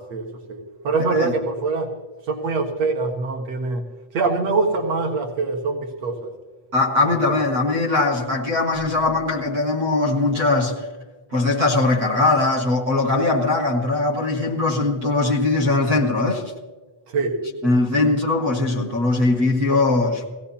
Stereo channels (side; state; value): left; late; 8.2 ms